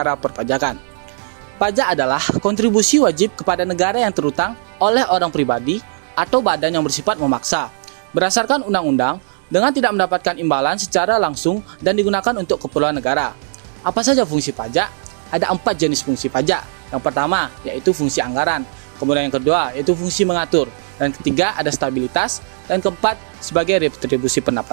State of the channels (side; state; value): left; silent; digital silence